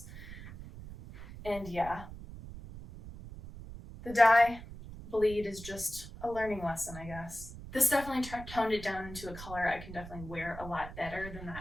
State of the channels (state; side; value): noise; right; rumble, 13 dB below the sound